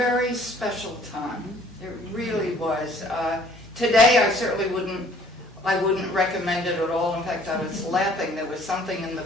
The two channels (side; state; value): both; normal; correlation 0.57